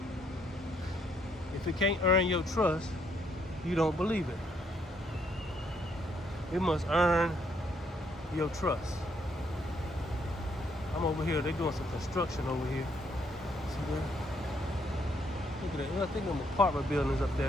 If it can't earn your trust, you don't believe it. It must earn your trust. I'm over here, they're doing some construction over here. See that? Look at that. I think them apartment buildings up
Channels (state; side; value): normal; both; correlation 0.71